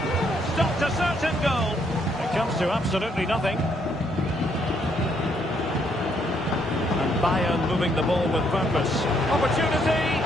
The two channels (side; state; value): both; normal; correlation 0.71